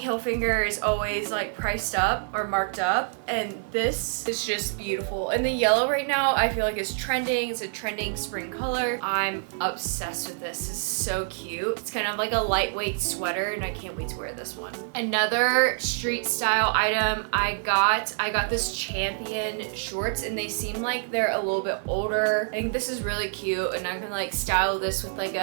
is always like priced up or marked up, and this is just beautiful. And the yellow right now I feel like is trending. It's a trending spring color. I'm obsessed with this. It's so cute. It's kind of like a lightweight sweater, and I can't wait to wear this one. Another street style item I got this Champion shorts, and they seem like they're a little bit older. I think this is really cute, and I can like style this with like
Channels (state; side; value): silent; left; digital silence